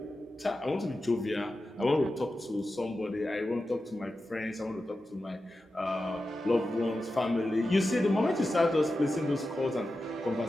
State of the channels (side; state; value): both; normal; correlation 0.92